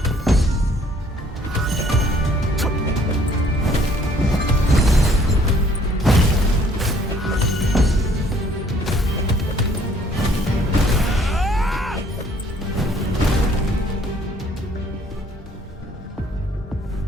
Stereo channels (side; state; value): both; normal; correlation 0.60